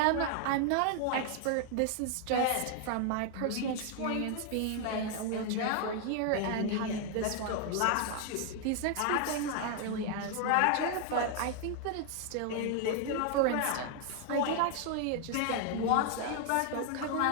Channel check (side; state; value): both; different; correlation 0.00